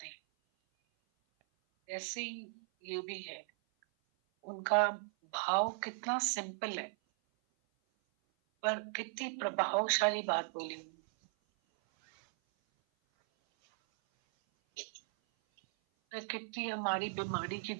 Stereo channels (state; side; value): silent; left; 53 dB below the other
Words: ऐसे ही ये भी है, उनका भाव कितना सिंपल है, पर कितनी प्रभावशाली बात बोली उन्होंने। कितनी हमारी बीमारी की